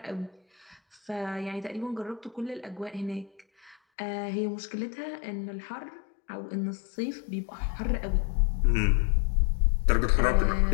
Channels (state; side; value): drops out; right; at 3.8 s